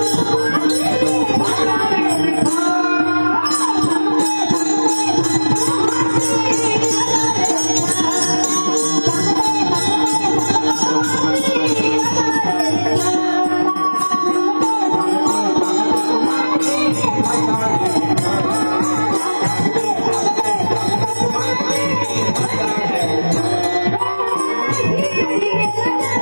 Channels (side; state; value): both; inverted; correlation -1.00